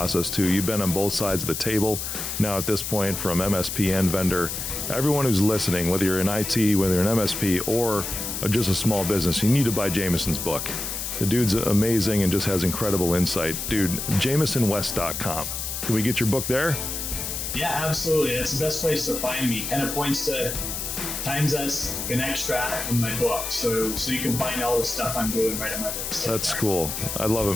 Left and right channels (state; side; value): noise; left; hiss, 4 dB below the sound